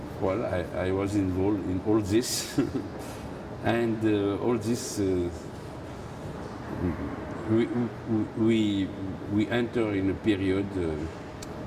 well, I was involved in all this, and all this we enter in a period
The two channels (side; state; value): both; identical; correlation 1.00